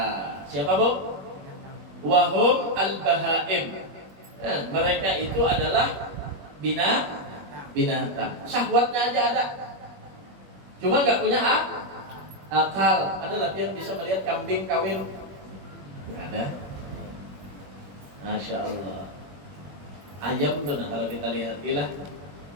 Siapa bu? Wahum al-bahaim. Mereka itu adalah binatang. Syahwatnya aja ada, cuma nggak punya akal. Ada latihan bisa melihat kambing kawin? Ada. Masya Allah. Ayam tuh, nah kalau kita lihat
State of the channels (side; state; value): left; late; 21 ms